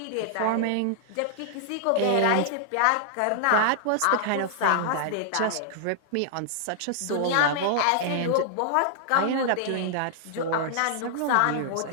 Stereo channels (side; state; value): both; different; correlation -0.01